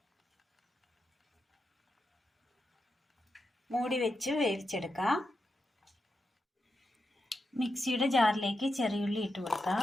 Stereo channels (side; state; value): both; normal; correlation 0.87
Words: മൂടി വെച്ച് വേവിച്ചെടുക്കാം. മിക്സിയുടെ ജാറിലേക്ക് ചെറിയുള്ളി ഇട്ട്